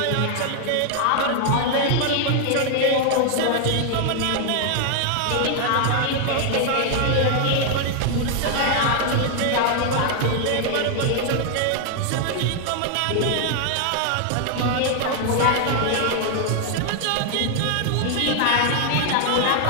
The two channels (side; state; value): both; different; correlation 0.00